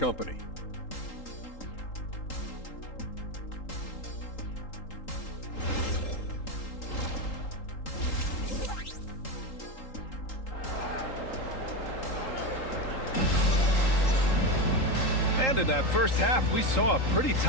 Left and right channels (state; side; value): late; right; 3.8 ms